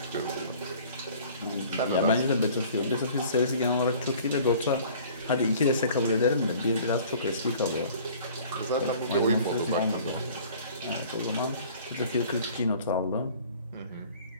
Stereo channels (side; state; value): both; inverted; correlation -0.49